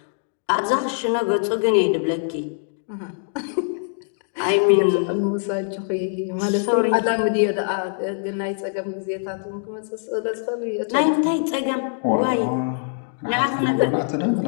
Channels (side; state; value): right; silent; digital silence